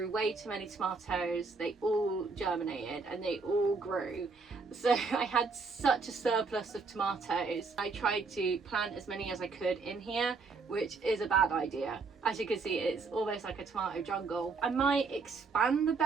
way too many tomatoes. They all germinated and they all grew, so I had such a surplus of tomatoes. I tried to plant as many as I could in here, which is a bad idea. As you can see, it's almost like a tomato jungle. I might expand the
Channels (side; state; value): left; quieter; 4.4 dB